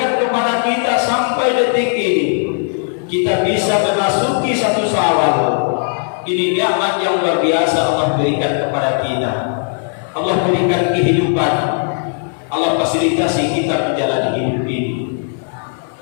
kepada kita sampai detik ini kita bisa memasuki satu Syawal. Ini nikmat yang luar biasa Allah berikan kepada kita. Allah berikan kehidupan. Allah fasilitasi kita menjalani hidup ini.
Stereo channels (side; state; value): right; silent; 60 dB below the other